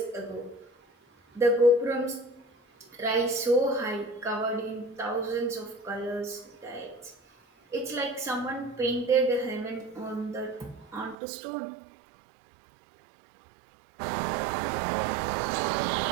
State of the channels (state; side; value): drops out; left; at 11.2 s